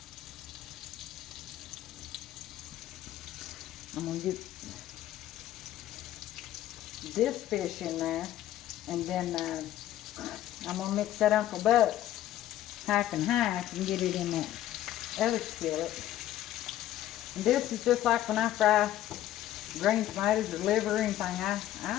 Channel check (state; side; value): quieter; right; 13.1 dB